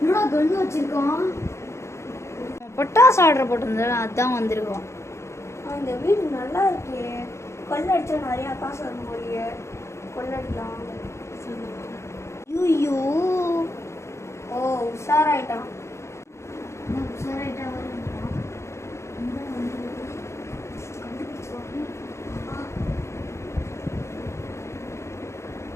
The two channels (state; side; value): late; right; 0.13 ms